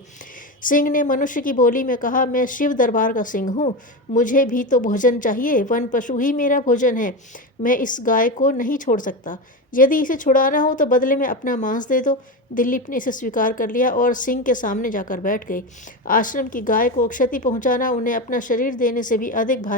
सिंह ने मनुष्य की बोली में कहा, मैं शिव दरबार का सिंह हूँ, मुझे भी तो भोजन चाहिए। वन पशु ही मेरा भोजन है। मैं इस गाय को नहीं छोड़ सकता। यदि इसे छुड़ाना हो तो बदले में अपना मांस दे दो। दिलीप ने इसे स्वीकार कर लिया और सिंह के सामने जाकर बैठ गए। आश्रम की गाय को क्षति पहुंचाना उन्हें अपना शरीर देने से भी अधिक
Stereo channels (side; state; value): both; normal; correlation 0.18